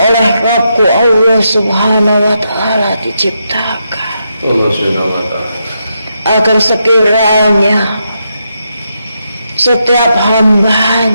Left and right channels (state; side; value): inverted; both; correlation -0.83